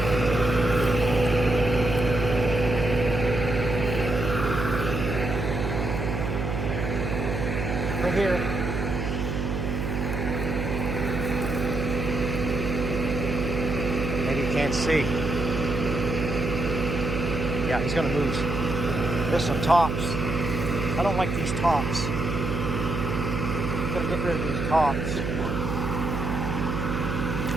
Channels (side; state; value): right; noise; hum, 2 dB below the sound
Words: Right here. Maybe you can't see. Yeah, he's gonna move. There's some tops. I don't like these tops. I'm gonna get rid of these tops.